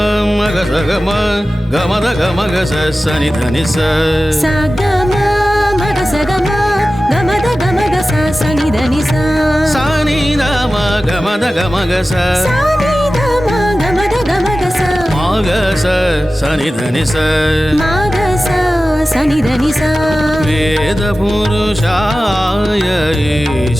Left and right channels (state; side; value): normal; both; correlation 0.95